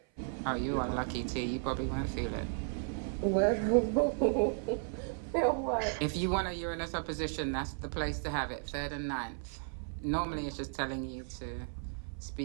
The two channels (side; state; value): left; silent; 55 dB below the other